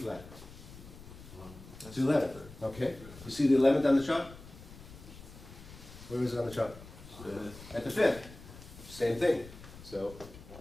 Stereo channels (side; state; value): left; noise; rumble, 17 dB below the sound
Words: It's 11. Okay. You see the 11th on the chart? Where is it on the chart? At the 5th. Same thing. So